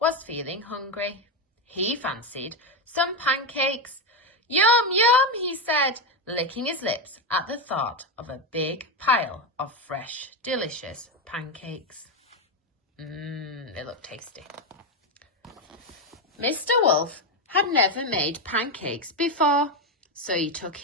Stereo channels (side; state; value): both; normal; correlation 0.09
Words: was feeling hungry. He fancied some pancakes. Yum, yum, he said, licking his lips at the thought of a big pile of fresh, delicious pancakes. They look tasty. Mr. Wolfe had never made pancakes before, so he took